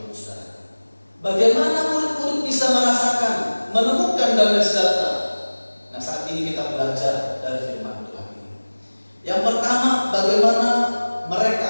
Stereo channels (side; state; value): both; inverted; correlation -1.00